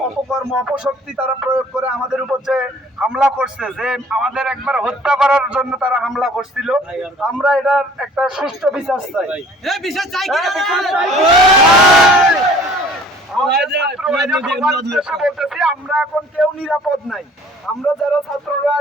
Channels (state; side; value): normal; both; correlation 0.52